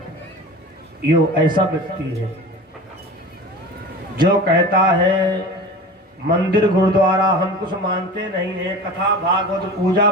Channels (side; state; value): both; normal; correlation 0.35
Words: यो ऐसा व्यक्ति है जो कहता है मंदिर गुरुद्वारा हम कुछ मानते नहीं है, कथा भागवत पूजा